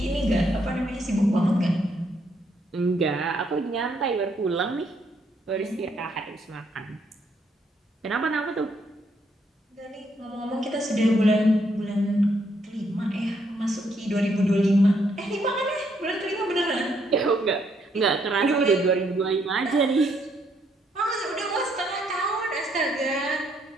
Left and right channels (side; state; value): both; normal; correlation 0.73